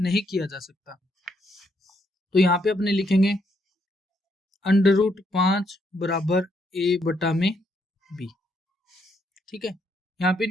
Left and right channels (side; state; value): both; normal; correlation 0.75